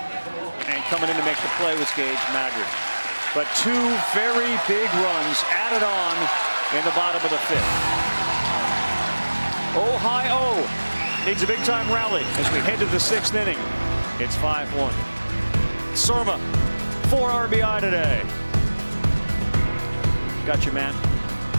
coming in to make the play was Gage Maggard. But 2 very big runs added on in the bottom of the 5th. Ohio needs a big-time rally as we head to the 6th inning. It's 5-1. Surma, 4 RBI today. Got you, man.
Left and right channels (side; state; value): both; inverted; correlation -1.00